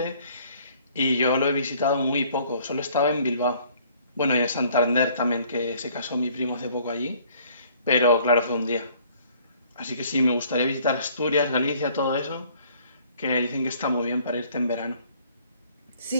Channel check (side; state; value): both; inverted; correlation -0.59